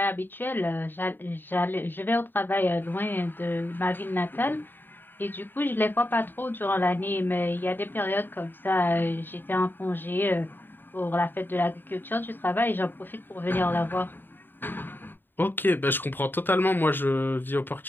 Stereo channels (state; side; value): late; right; 0.094 ms